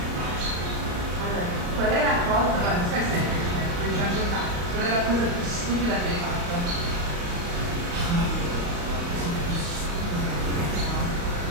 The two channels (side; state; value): left; late; 35 ms